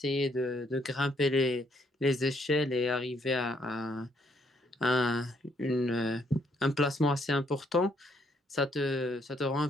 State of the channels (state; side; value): normal; both; correlation 0.71